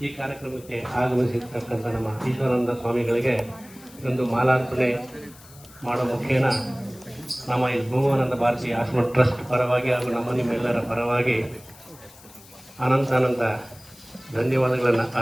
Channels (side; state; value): left; noise; hiss, 22 dB below the sound